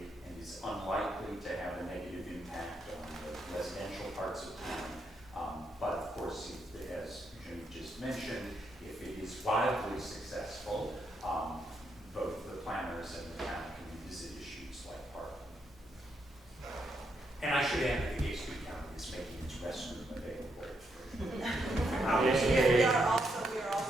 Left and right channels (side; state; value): both; normal; correlation 0.79